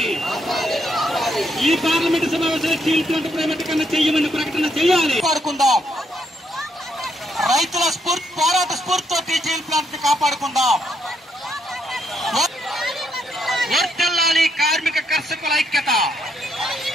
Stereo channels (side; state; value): both; normal; correlation 0.74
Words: ఈ పార్లమెంటు సమావేశంలో స్టీల్ ప్లాంట్ ప్రైవేటీకరణ చేయమని ప్రకటన చేయాలి. కాపాడుకుందాం. రైతుల పోరాట స్ఫూర్తితోటి స్టీల్ ప్లాంట్ ని కాపాడుకుందాం. వర్ధిల్లాలి కార్మిక కర్షకుల ఐక్యత.